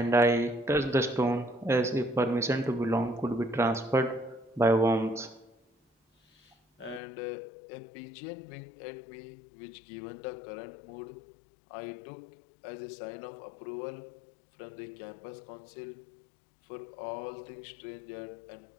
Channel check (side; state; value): right; drops out; at 7.0 s